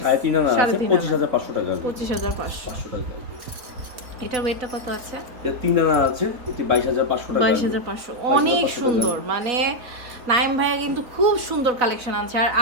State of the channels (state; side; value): late; left; 3.9 ms